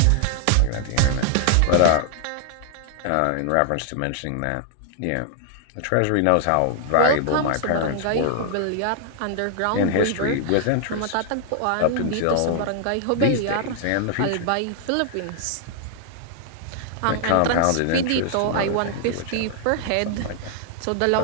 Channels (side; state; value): both; different; correlation 0.00